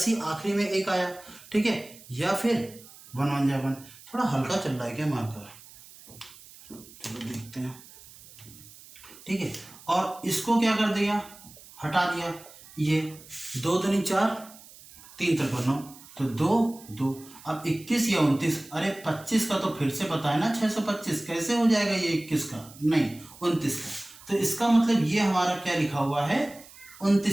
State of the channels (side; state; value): right; noise; hiss, 20 dB below the sound